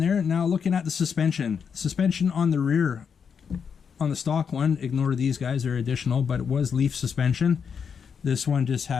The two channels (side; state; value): right; quieter; 6.7 dB